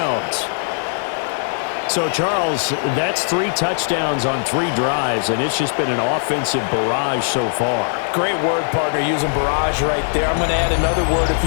So, Charles, that's 3 touchdowns on 3 drives, and it's just been an offensive barrage so far. Great word, partner, using barrage right there. I'm going to add another word if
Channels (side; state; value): right; silent; digital silence